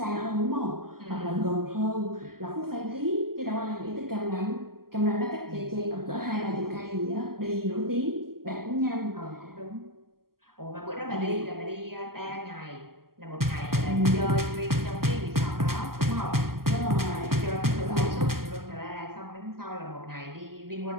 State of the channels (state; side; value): late; left; 0.92 ms